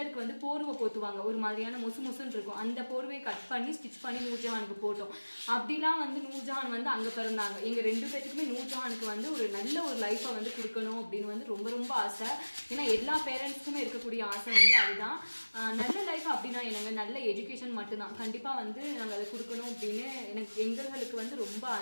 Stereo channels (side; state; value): both; inverted; correlation -1.00